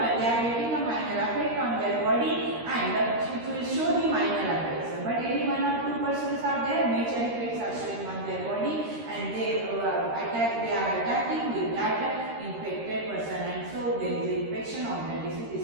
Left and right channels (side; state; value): left; late; 13 ms